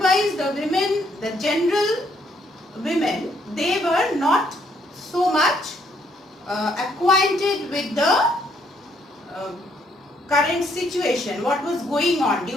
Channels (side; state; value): both; normal; correlation 0.70